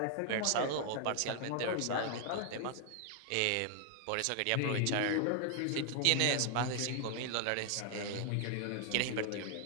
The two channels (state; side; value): different; both; correlation 0.00